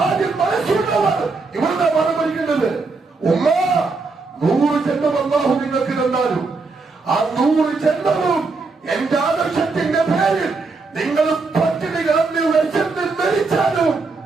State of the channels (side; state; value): left; quieter; 4.0 dB